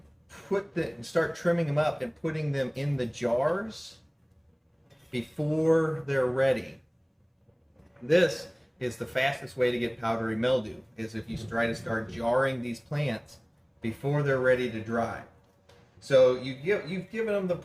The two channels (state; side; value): identical; both; correlation 1.00